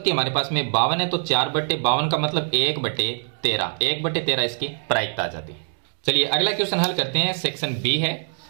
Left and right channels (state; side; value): silent; left; digital silence